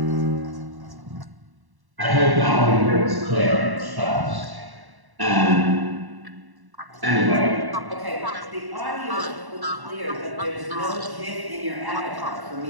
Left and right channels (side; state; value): left; late; 1.1 ms